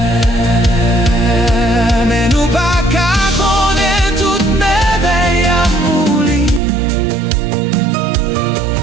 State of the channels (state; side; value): drops out; left; at 6.6 s